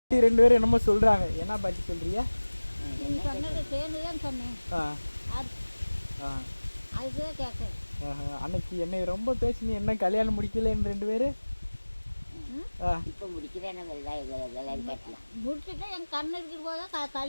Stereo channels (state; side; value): inverted; both; correlation -1.00